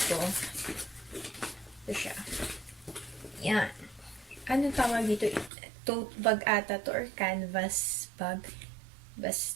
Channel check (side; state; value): left; drops out; at 5.5 s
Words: ko. Ito siya. Yan. Ano tawag dito? Tote bag ata to or canvas bag.